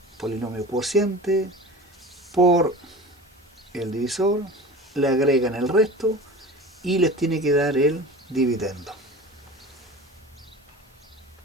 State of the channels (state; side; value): normal; both; correlation 0.36